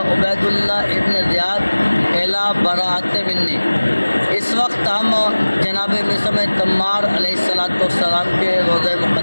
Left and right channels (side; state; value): both; inverted; correlation -1.00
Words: عبید اللہ ابن زیاد الی براءۃ منی۔ اس وقت ہم جناب میثم تمار علیہ الصلوۃ والسلام کے روضہ